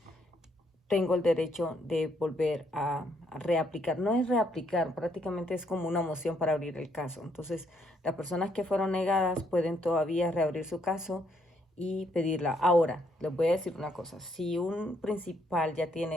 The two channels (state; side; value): normal; both; correlation 0.71